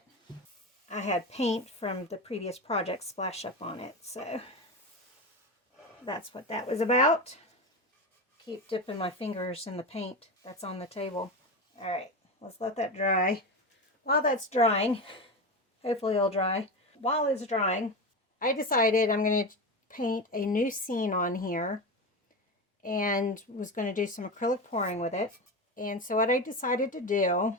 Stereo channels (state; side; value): normal; both; correlation 0.21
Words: I had paint from the previous project splash up on it. So that's what that was about. Keep dipping my fingers in the paint that's on the table. All right. Let's let that dry. While that's drying, hopefully it'll dry. While it's drying, I decided I'm going to paint a new scene on here and was going to do some acrylic pouring with it. And so what I decided to do